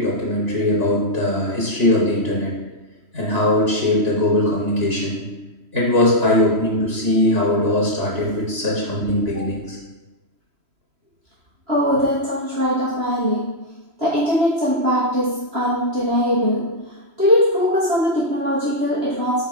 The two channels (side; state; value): left; late; 3.0 ms